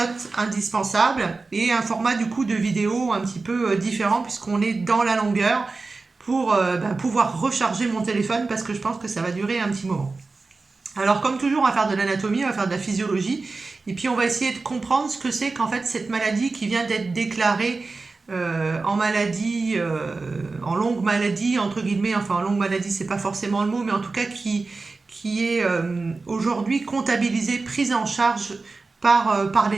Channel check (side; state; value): left; quieter; 3.8 dB